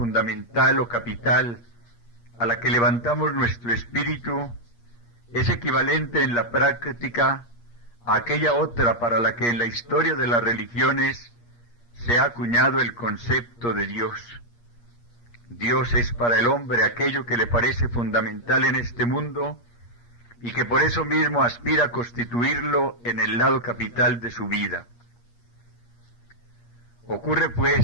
o capital a la que levantamos nuestro espíritu es equivalente en la práctica a aquella otra para la que en la historia de las religiones se ha acuñado el concepto de Dios. Dios es para el hombre aquello que le parece fundamental en este mundo y que por eso mismo aspira a constituirlo en el lado capital de su vida. Ocurre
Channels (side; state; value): right; late; 8.5 ms